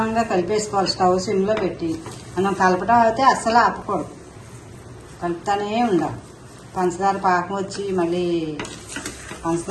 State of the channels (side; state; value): both; identical; correlation 1.00